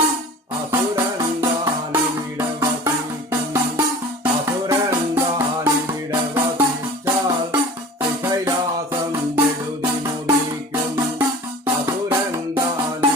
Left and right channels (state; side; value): normal; both; correlation 0.41